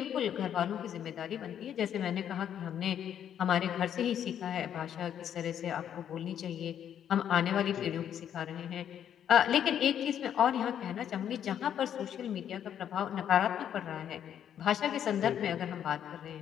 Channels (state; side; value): quieter; right; 9.5 dB